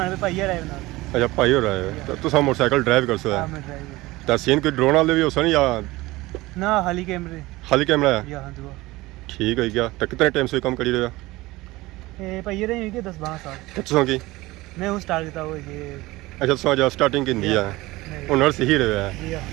पे भाई आए ना अच्छा भाई हो रहे हो तो तुम मोटरसाइकिल ड्राइव कर सो तो सीन कोई ड्रोन वाले भी हो सन या ना खाली कैमरा है या हां दुआ ठीक है क्या तो कितने टाइम से काम करी रहे हो ए भाई रहे हैं कि 10-12 साल कितने की मैं हूं स्टार्ट करता हूं ये अच्छा सो जा स्टार्टिंग की दी है हुनर से ही रहे है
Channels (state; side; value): quieter; left; 19.8 dB